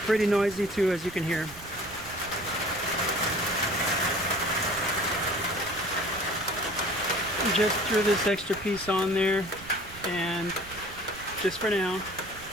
Pretty noisy too, as you can hear. Just threw this extra piece on there, and just for now,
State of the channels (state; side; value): noise; right; rumble, 17 dB below the sound